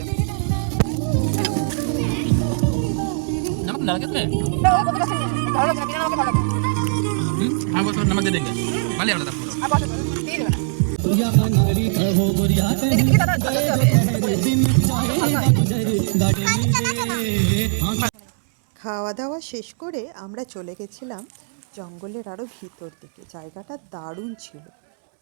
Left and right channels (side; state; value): left; silent; 65 dB below the other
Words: नमक डाल के इसमें तो वो पकौड़ा से डालो ना बिना नमक डालो हाँ वो थोड़ा नमक दे देंगे वाले वाला था अब बहुत तेज है लेकिन देखिए दादा খাওয়া দাওয়া শেষ করে আমরা চলে গেছিলাম জঙ্গলের আরও ভিতর দিকে। জায়গাটা দারুণ ছিল,